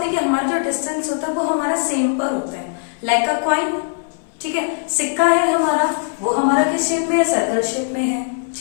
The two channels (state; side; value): silent; right; 61 dB below the other